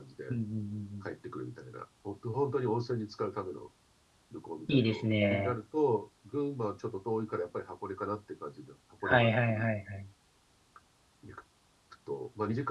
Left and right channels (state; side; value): identical; both; correlation 1.00